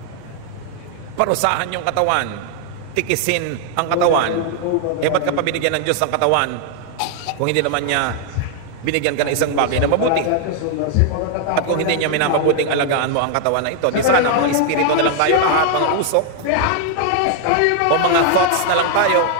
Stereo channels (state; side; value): different; both; correlation 0.00